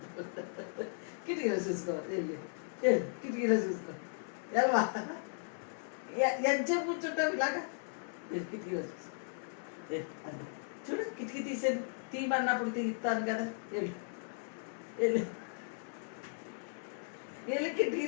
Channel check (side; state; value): right; silent; 53 dB below the other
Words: కిటికీలో చూసుకో. వెళ్ళి కిటికీలో చూసుకో. ఎల్వా ఎంతసేపు కూర్చుంటావు ఇలాగా? కిటికీలో చూసుకో. చూడు కిటికీ తీసాను, తీయమన్నప్పుడు తీస్తాను కదా. వెళ్ళి వెళ్ళి వెళ్ళి కిటికీ